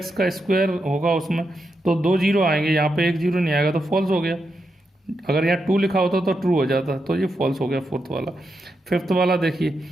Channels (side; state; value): both; normal; correlation 0.85